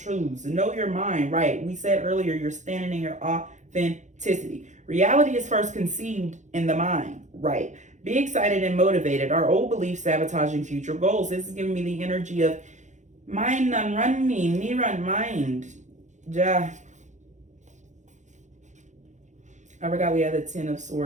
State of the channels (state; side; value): late; left; 0.35 ms